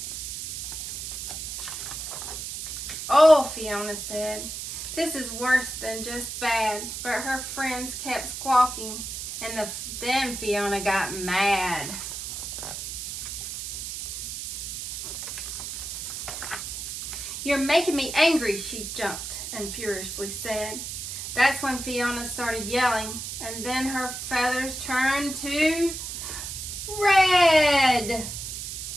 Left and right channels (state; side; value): noise; right; hiss, 6 dB below the sound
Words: Oh, Fiona said, this is worse than just bad. But her friends kept squawking, and then Fiona got mad. You're making me angry, she jumped and furiously said. That's when Fiona started yelling, and then her feathers turned to red.